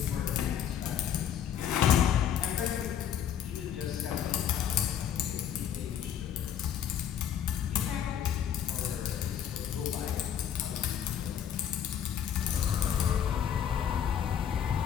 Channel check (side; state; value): right; quieter; 9.4 dB